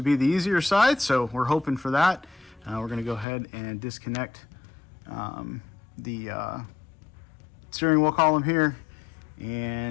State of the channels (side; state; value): right; drops out; at 3.2 s